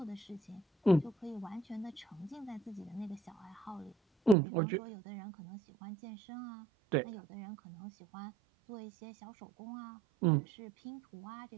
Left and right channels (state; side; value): drops out; left; at 4.4 s